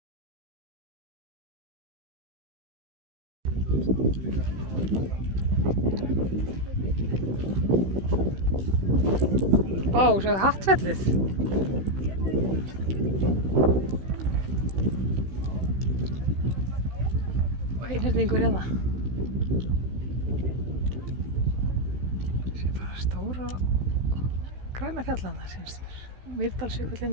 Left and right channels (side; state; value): left; late; 16 ms